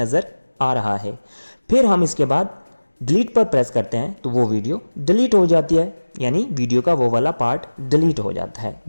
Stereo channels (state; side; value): inverted; both; correlation -1.00